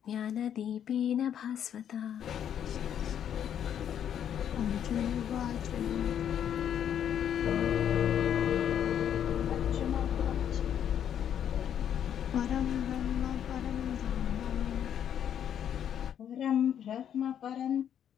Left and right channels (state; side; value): quieter; right; 9.4 dB